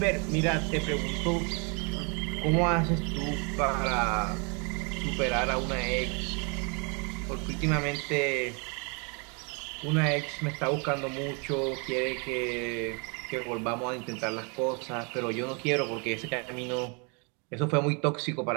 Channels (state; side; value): quieter; left; 34.4 dB